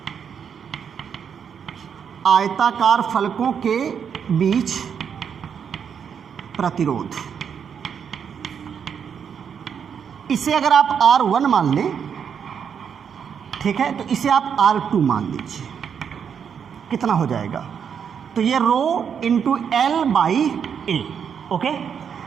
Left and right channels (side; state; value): left; quieter; 7.4 dB